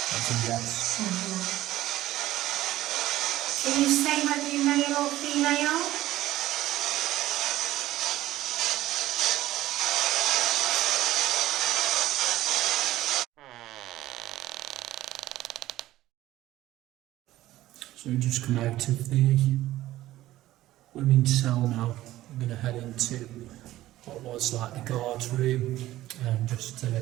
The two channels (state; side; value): quieter; left; 15.2 dB